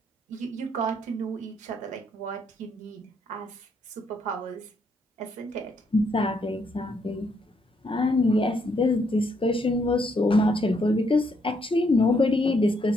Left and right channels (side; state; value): both; normal; correlation 0.73